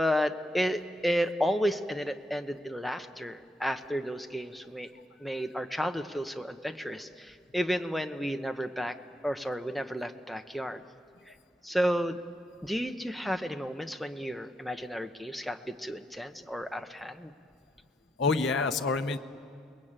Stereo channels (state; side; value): normal; both; correlation 0.81